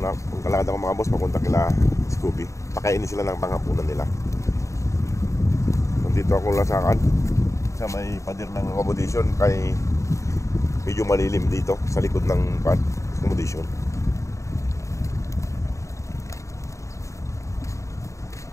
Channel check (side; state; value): right; late; 0.15 ms